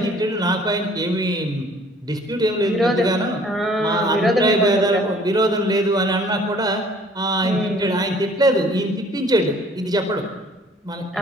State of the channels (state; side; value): normal; both; correlation 0.55